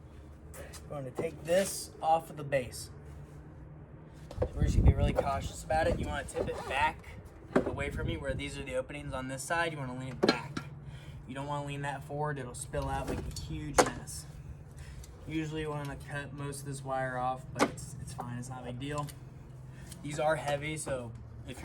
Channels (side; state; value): both; identical; correlation 1.00